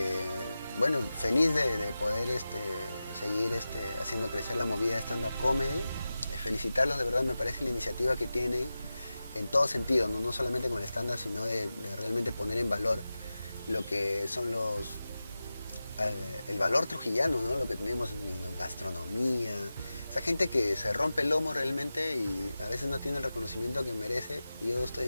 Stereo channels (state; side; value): inverted; both; correlation -0.94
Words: bueno, feliz de poder seguir haciendo crecer la movida de stand-up comedy. Felicitarlos, de verdad, me parece la iniciativa que tienen en todo sentido, no solamente con el stand-up, sino de realmente poner en valor lo que son el valor trujillano, ¿no? Lo que tenemos en la gastronomía, esa gente que se rompe el lomo realmente y a veces no tiene el reconocimiento que merece. Yo estoy